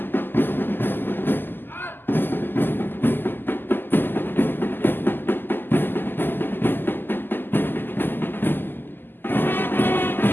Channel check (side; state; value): right; late; 0.094 ms